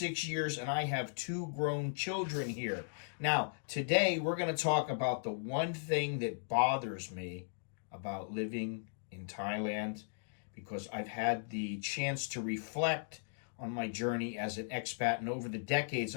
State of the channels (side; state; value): right; silent; digital silence